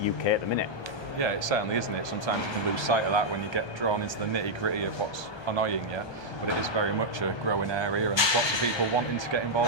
UK at the minute. Yeah, it certainly isn't it. Sometimes you can lose sight of that when you get drawn into the nitty-gritty of what's annoying you, but it is very much a growing area, and there's lots of people wanting to get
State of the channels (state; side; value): late; right; 1.2 ms